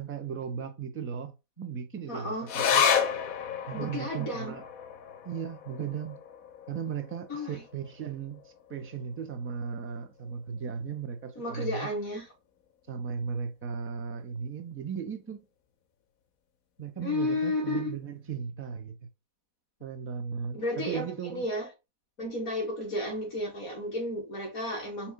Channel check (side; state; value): right; late; 4.1 ms